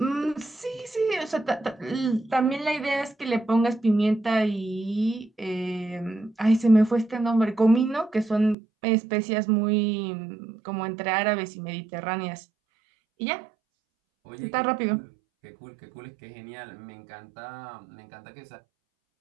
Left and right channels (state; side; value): drops out; left; at 8.6 s